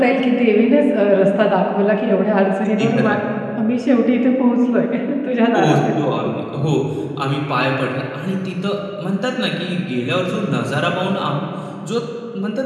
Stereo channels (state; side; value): identical; both; correlation 1.00